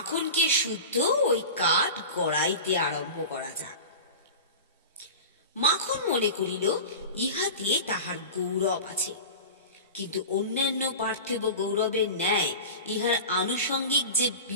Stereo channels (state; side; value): inverted; both; correlation -0.32